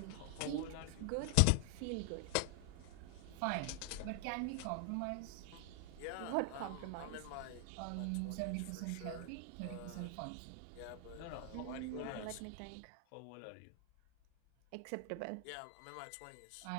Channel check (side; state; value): both; different; correlation 0.00